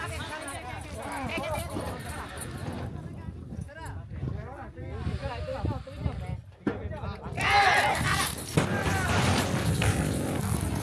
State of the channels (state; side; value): identical; both; correlation 1.00